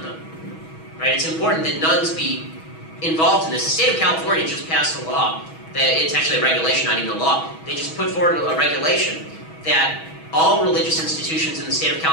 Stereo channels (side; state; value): right; late; 6.2 ms